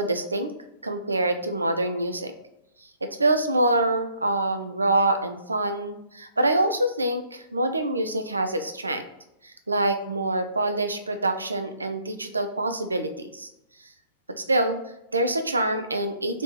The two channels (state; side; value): inverted; both; correlation -0.67